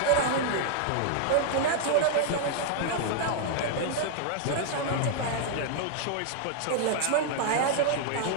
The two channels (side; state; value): both; different; correlation 0.00